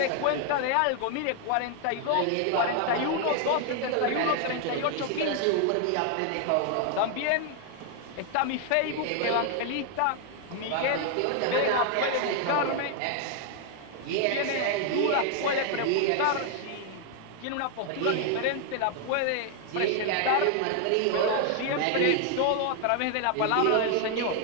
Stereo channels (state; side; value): different; both; correlation 0.00